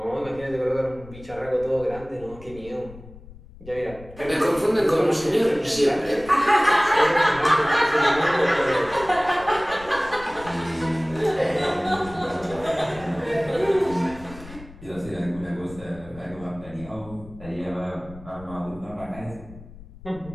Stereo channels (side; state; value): left; noise; rumble, 18 dB below the sound